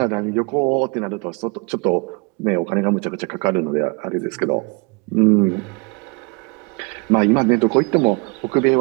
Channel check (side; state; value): left; quieter; 31.2 dB